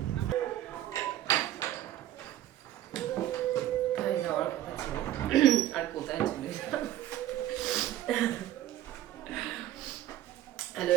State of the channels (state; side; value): quieter; left; 13.2 dB